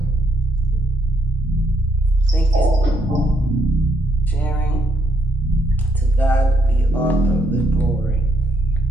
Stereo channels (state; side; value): normal; both; correlation 0.74